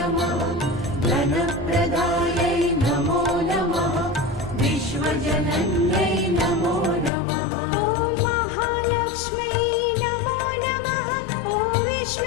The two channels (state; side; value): drops out; right; at 7.1 s